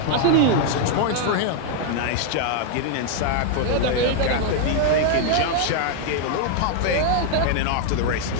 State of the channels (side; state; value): both; different; correlation 0.00